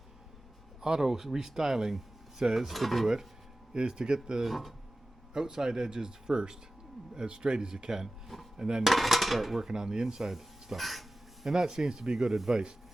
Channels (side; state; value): both; normal; correlation 0.95